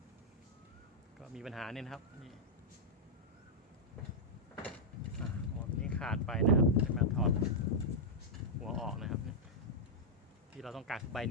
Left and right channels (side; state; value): both; normal; correlation -0.06